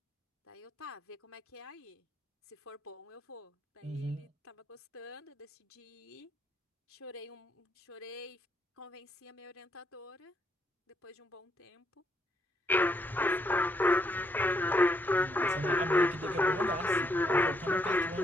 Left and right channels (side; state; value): both; normal; correlation 0.74